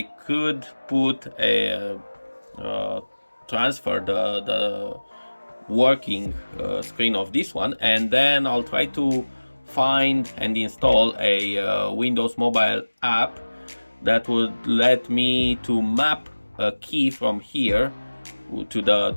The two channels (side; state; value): both; inverted; correlation -1.00